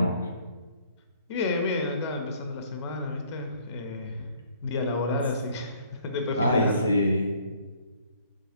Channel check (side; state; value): both; inverted; correlation -0.59